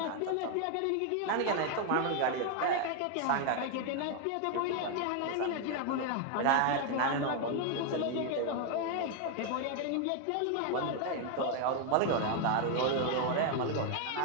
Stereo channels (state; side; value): different; both; correlation 0.01